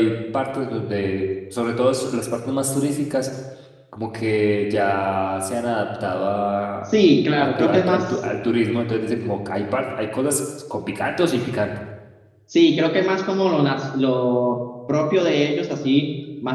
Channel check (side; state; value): both; identical; correlation 1.00